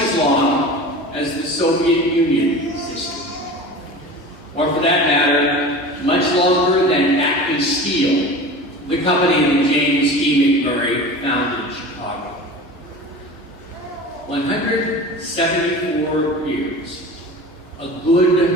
long as the Soviet Union existed. Or for that matter, much longer than Acme Steel, the company that James E. MacMurray founded in Chicago. 174 years, a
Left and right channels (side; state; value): both; normal; correlation 0.35